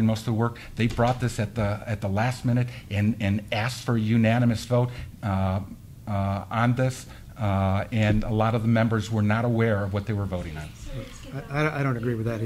most of the work. They brought this at the last minute and asked for a unanimous vote on this, and a lot of the members were not aware of what they were voting on. I don't agree with that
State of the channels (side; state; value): both; identical; correlation 1.00